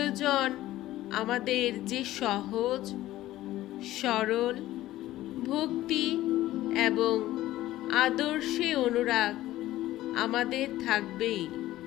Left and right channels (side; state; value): right; quieter; 15.3 dB